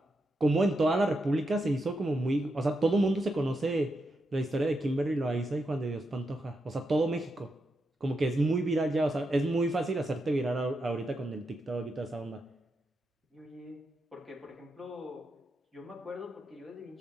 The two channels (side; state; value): both; normal; correlation 0.85